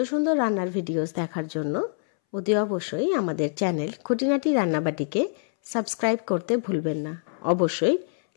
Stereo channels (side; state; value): right; silent; 61 dB below the other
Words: সুন্দর রান্নার ভিডিওস দেখার জন্য অতি অবশ্যই আমাদের চ্যানেল খুঁটিনাটি রান্নাবাটিকে সাবস্ক্রাইব করতে ভুলবেন না। অবশ্যই